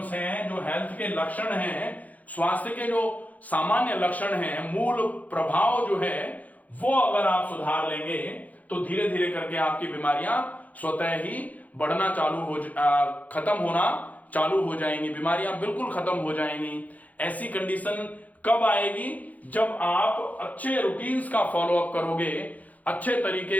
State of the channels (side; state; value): right; late; 0.077 ms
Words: हैं, जो हेल्थ के लक्षण हैं, स्वास्थ्य के जो सामान्य लक्षण हैं, मूल प्रभाव जो है वो अगर आप सुधार लेंगे तो धीरे धीरे करके आपकी बीमारियां स्वतः ही बढ़ना चालू हो, खत्म होना चालू हो जाएंगी। बीमारियां बिल्कुल खत्म हो जाएंगी। ऐसी कंडीशन कब आएगी? जब आप अच्छे रूटीन्स का फॉलोअप करोगे, अच्छे